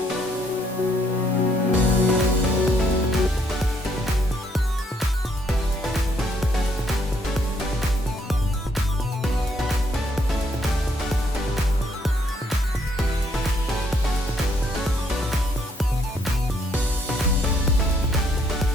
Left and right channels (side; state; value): both; normal; correlation 0.70